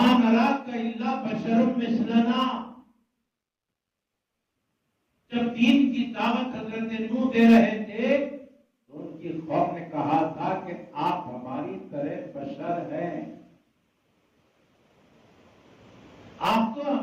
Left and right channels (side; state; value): both; identical; correlation 1.00